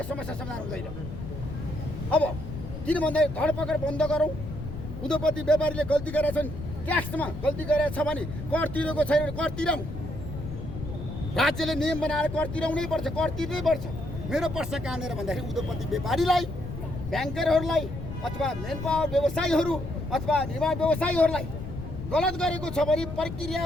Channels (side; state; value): left; noise; rumble, 9 dB below the sound